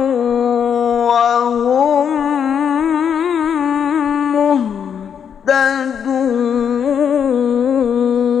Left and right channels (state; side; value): quieter; right; 7.8 dB